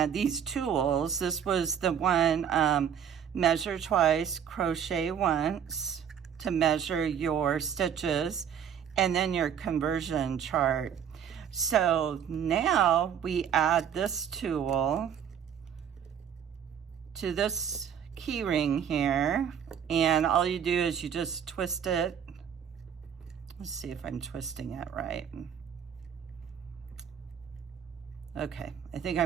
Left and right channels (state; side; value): quieter; left; 8.4 dB